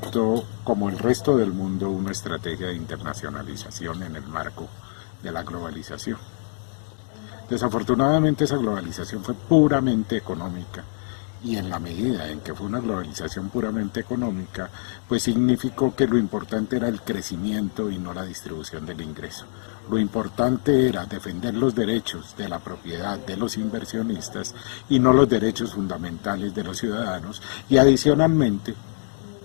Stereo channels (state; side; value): silent; right; digital silence